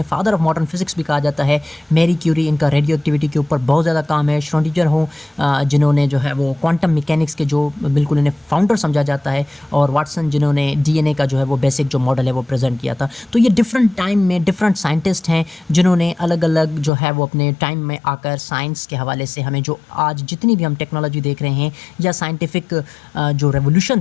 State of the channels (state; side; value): drops out; right; at 16.9 s